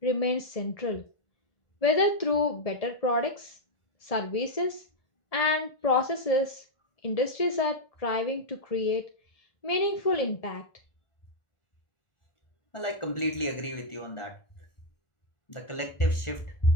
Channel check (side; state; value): right; late; 1.4 ms